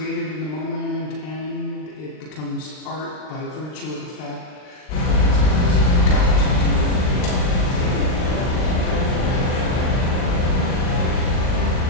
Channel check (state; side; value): late; right; 39 ms